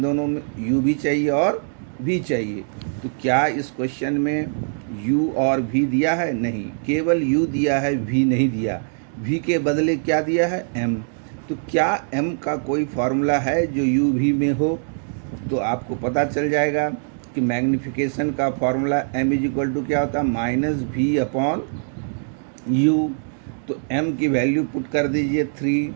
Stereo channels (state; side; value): silent; left; digital silence